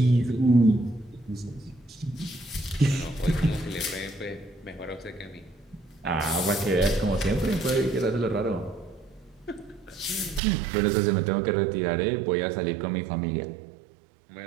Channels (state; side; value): drops out; left; at 10.4 s